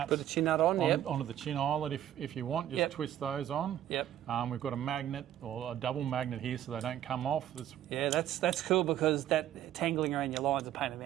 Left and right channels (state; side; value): quieter; left; 11.7 dB